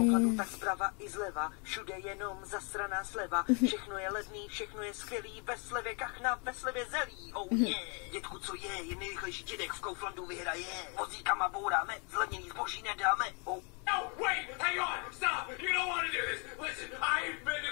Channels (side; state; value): right; quieter; 35.5 dB